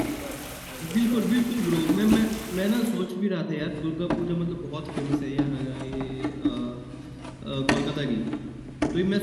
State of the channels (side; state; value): both; identical; correlation 1.00